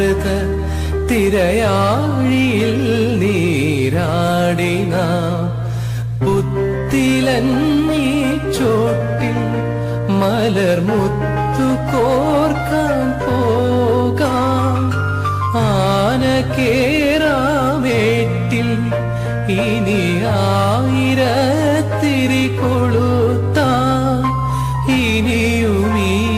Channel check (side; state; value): both; identical; correlation 1.00